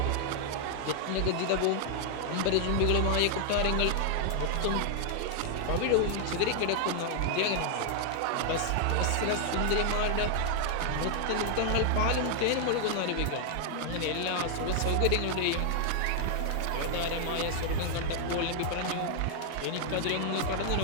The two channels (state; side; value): different; both; correlation 0.00